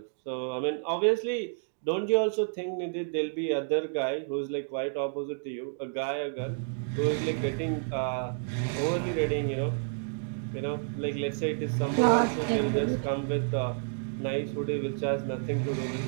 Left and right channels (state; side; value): silent; left; digital silence